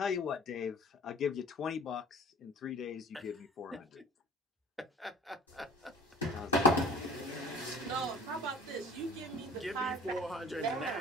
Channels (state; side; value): normal; both; correlation 0.47